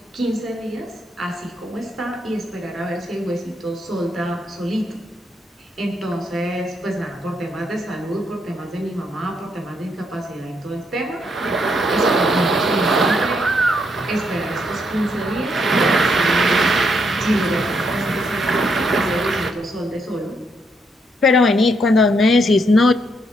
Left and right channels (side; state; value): both; normal; correlation 0.76